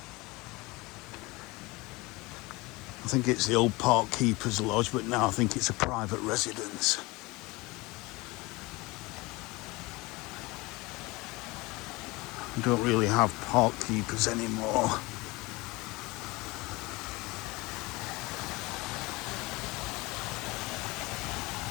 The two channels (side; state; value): right; quieter; 23.0 dB